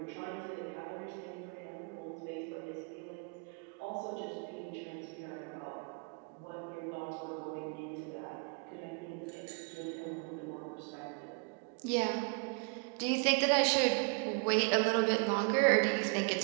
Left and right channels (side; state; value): left; quieter; 35.8 dB